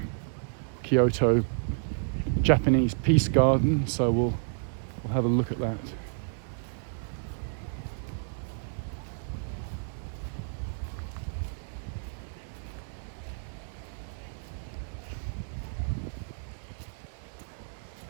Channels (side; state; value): left; silent; 57 dB below the other